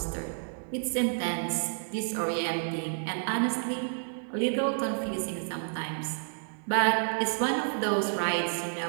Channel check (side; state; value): left; silent; digital silence